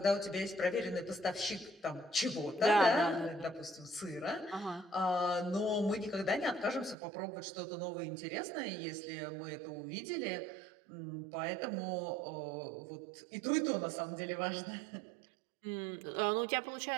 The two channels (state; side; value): drops out; left; at 7.0 s